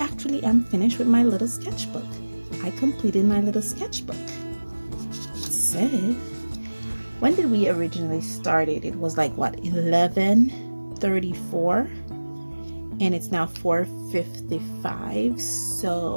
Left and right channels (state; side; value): inverted; both; correlation -1.00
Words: am finished with my little sketchbook. I completed my little sketchbook. It said, when did we originally start it? It was like what, 11:34, and it's now 4:55.